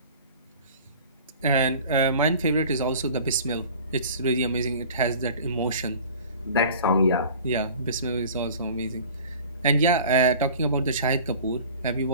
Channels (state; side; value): inverted; both; correlation -0.43